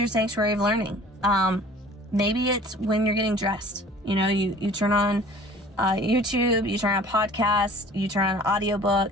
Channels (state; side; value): normal; both; correlation 0.48